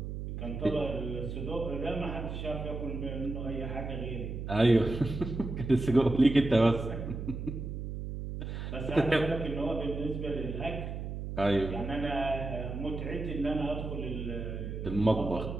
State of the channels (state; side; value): noise; right; hum, 6 dB below the sound